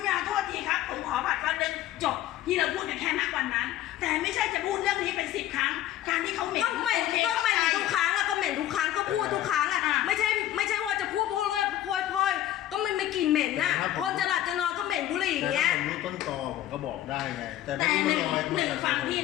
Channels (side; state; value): right; quieter; 13.0 dB